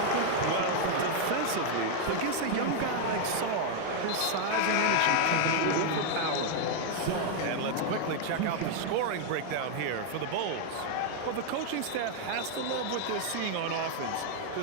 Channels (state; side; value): different; both; correlation 0.00